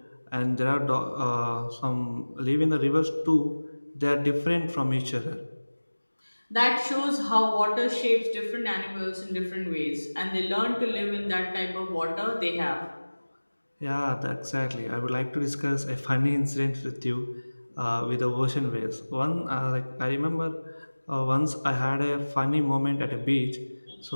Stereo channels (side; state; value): both; inverted; correlation -1.00